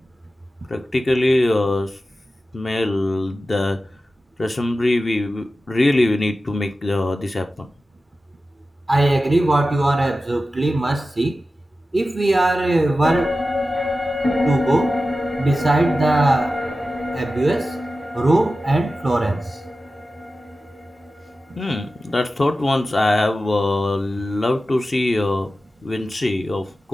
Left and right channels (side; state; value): both; normal; correlation 0.94